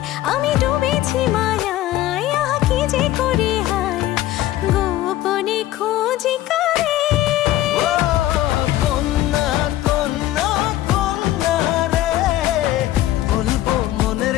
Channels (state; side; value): quieter; right; 14.5 dB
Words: আমি ডুবেছি মায়ায়, আহা কি যে করি হায়, গোপনে খোঁজি কারে। ও কন্যা কন্যা কন্যা রে, বলবো মনের